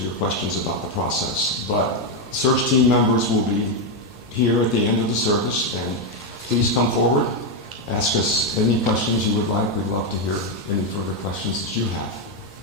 questions about the process. But search team members will be here at the end of the service, and please come forward, ask us any questions you would like. We'd love to hear any further questions that you have.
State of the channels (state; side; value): normal; both; correlation 0.04